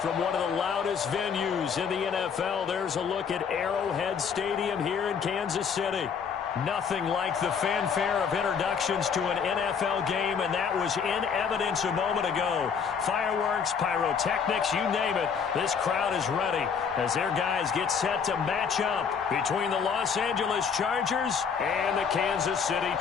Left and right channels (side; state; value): right; quieter; 6.5 dB